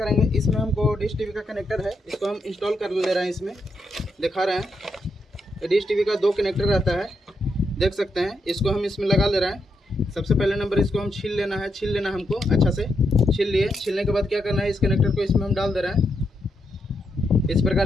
इसमें हमको डिश टीवी का कनेक्टर है, इसको हम इंस्टॉल कर ले रहे हैं। इसमें दिखा रहे हैं डिश टीवी का 2 कनेक्टर रहता है, देख सकते हैं। इसको हम इसमें लगा ले रहे हैं। सबसे पहले नंबर इसको हम छील लेना है, छील लेना हमको अच्छा से। छील लिए। छीलने के बाद क्या करना है, इस कनेक्टर को इसमें हम डाल दे रहे हैं। इस प्रकार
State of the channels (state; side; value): normal; both; correlation 0.81